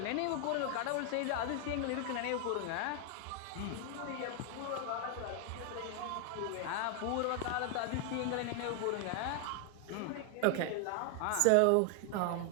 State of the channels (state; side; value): different; both; correlation 0.00